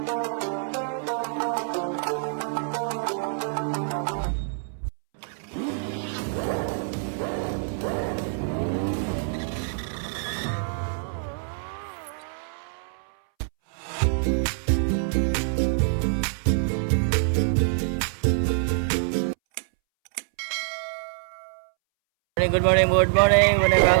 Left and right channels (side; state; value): left; silent; 61 dB below the other